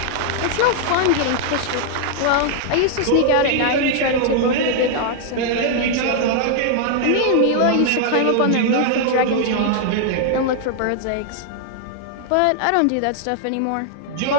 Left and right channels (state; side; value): different; both; correlation -0.01